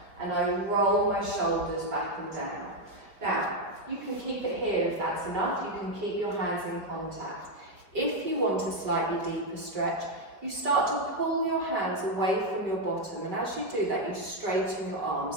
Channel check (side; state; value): left; late; 5.0 ms